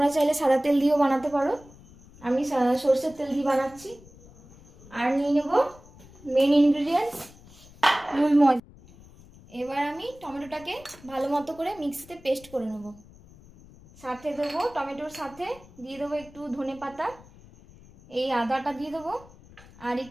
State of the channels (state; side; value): noise; left; rumble, 23 dB below the sound